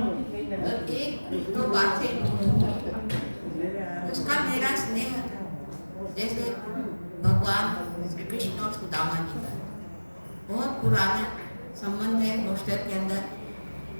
एक दो बात से उसका मेरा स्नेह जैसे भगवान श्री कृष्ण और सुदामा जी का बहुत पुराना संबंध है। हॉस्टल के अंदर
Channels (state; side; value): inverted; both; correlation -1.00